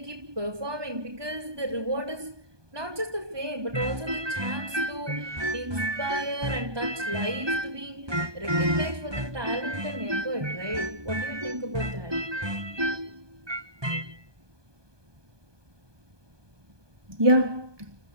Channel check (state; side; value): late; left; 1.2 ms